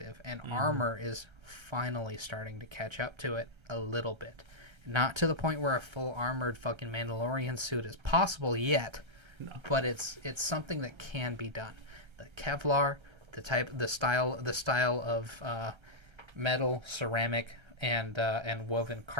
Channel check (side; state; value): left; late; 1.3 ms